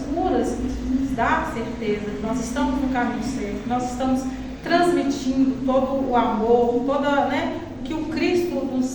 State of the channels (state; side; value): identical; both; correlation 1.00